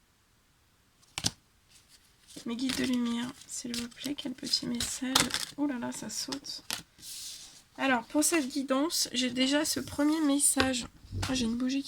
Mes guides de lumière, s'il vous plaît, quel petit message. Oh là là, ça saute. Alors, pour cette guidance, j'ai déjà ce premier message. Ah, j'ai une bougie qui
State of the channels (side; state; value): both; identical; correlation 1.00